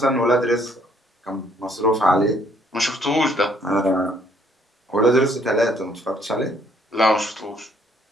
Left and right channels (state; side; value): normal; both; correlation 0.65